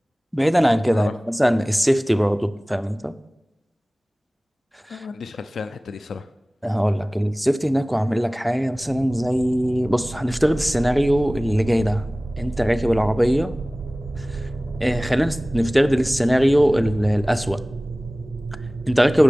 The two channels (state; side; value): normal; both; correlation 0.98